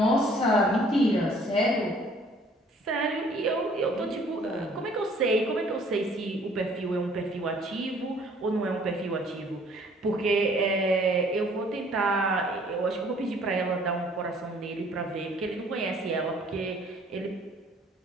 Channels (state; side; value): normal; both; correlation 0.57